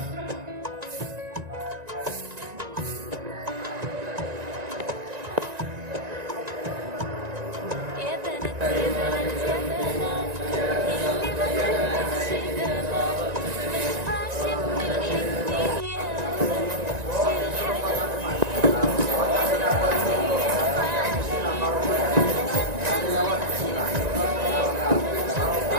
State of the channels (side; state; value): left; late; 1.9 ms